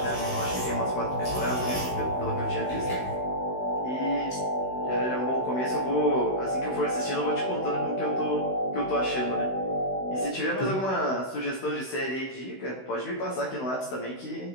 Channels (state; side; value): late; right; 16 ms